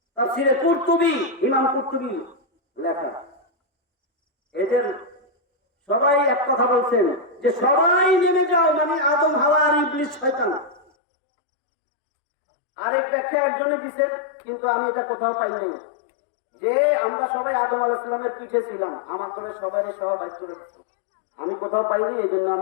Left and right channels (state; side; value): drops out; right; at 10.9 s